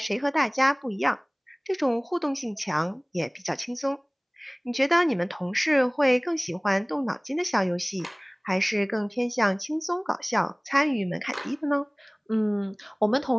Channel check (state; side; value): identical; both; correlation 1.00